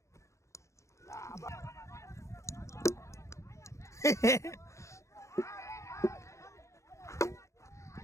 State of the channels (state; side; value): late; right; 0.14 ms